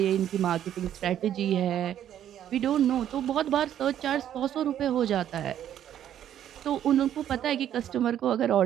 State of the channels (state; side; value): quieter; left; 10.7 dB